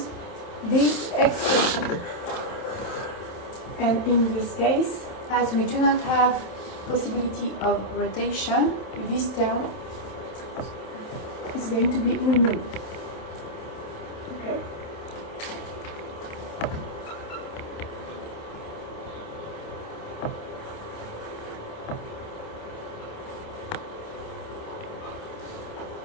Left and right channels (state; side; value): late; right; 27 ms